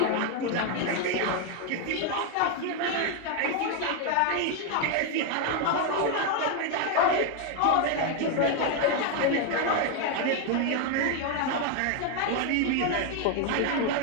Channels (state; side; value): different; both; correlation 0.01